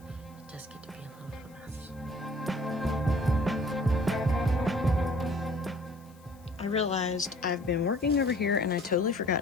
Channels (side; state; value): left; noise; hiss, 29 dB below the sound